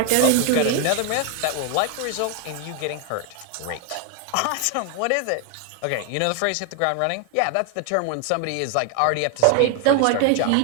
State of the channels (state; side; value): different; both; correlation 0.01